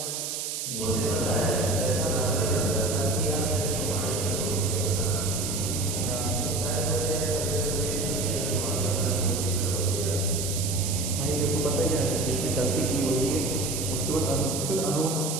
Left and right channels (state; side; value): noise; right; hiss, 3 dB below the sound